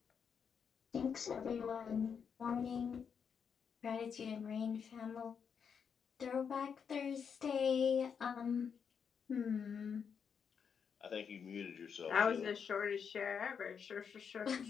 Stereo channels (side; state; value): right; quieter; 6.8 dB